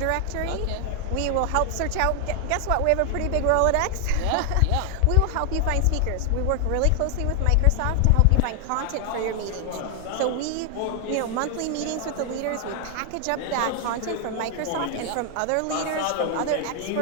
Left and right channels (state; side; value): different; both; correlation 0.00